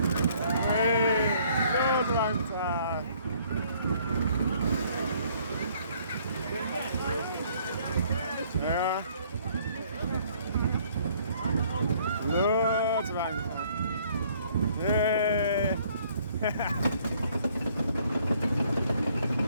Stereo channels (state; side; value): inverted; both; correlation -0.62